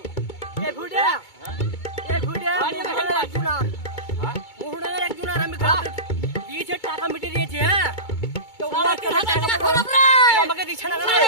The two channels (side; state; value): right; late; 2.2 ms